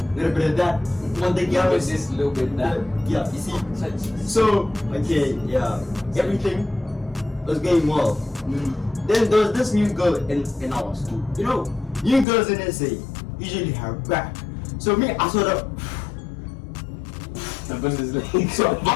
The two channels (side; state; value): right; drops out; at 12.2 s